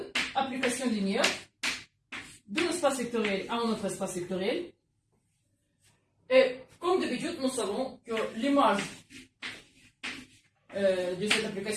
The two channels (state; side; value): identical; both; correlation 1.00